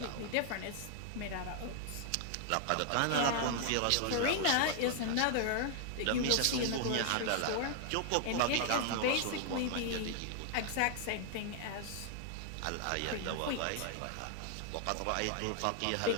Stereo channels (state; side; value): different; both; correlation 0.00